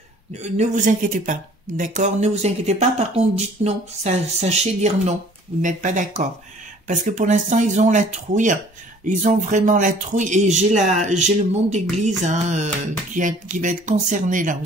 vous inquiétez pas, d'accord? Ne vous inquiétez pas, par contre, dites non. Sachez dire non. Vous n'êtes pas d'accord. Parce que pour l'instant, ils ont la trouille. Ils ont vraiment la trouille. Et j'ai le monde d'église hein, qui va être concerné là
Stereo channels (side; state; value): both; normal; correlation 0.53